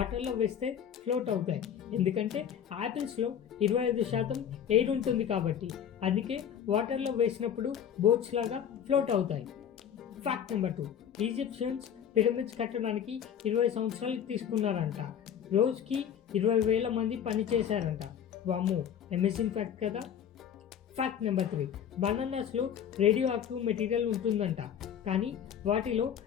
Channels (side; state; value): right; quieter; 8.8 dB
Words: వేస్తే float అవుతాయి. ఎందుకంటే యాపిల్స్లో 25% ఎయిర్ ఉంటుంది కాబట్టి. అందుకే వాటర్లో వేసినప్పుడు బోట్స్ లాగా ఫ్లోట్ అవుతాయి. Fact number 2. ఈజిప్షియన్స్ పిరమిడ్స్ కట్టడానికి 20 సంవత్సరాలు తీసుకున్నారంట. రోజుకి 20,000 మంది పని చేశారంట. వామ్మో, అమేజింగ్ ఫ్యాక్ట్ కదా. Fact number 3. బనానాస్లో రేడియో యాక్టివ్ మెటీరియల్ ఉంటుందంట, కానీ వాటిలో